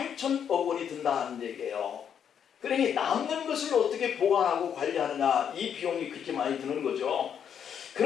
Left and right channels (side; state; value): right; quieter; 8.3 dB